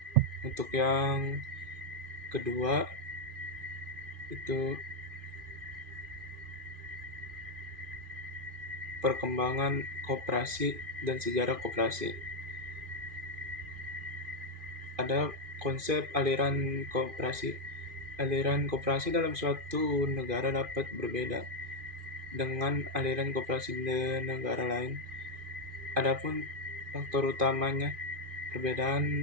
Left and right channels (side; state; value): left; late; 2.5 ms